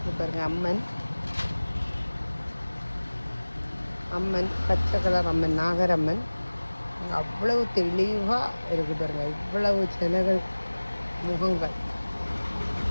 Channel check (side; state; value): both; inverted; correlation -1.00